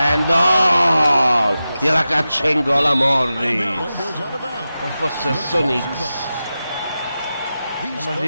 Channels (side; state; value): both; inverted; correlation -0.93